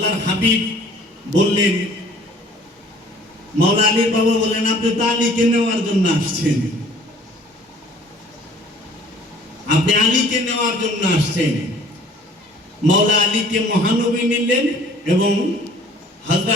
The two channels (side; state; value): both; normal; correlation 0.53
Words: হাবিব বললেন, মাওলা আলীর বাবা বললেন, আপনি তো আলীকে নেওয়ার জন্য আসছেন, আপনি আলীকে নেওয়ার জন্য আসছেন। মাওলা আলীকে মহানবী নিলেন এবং